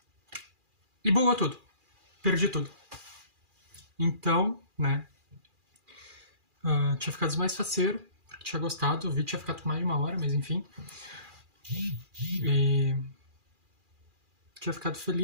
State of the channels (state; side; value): late; left; 2.4 ms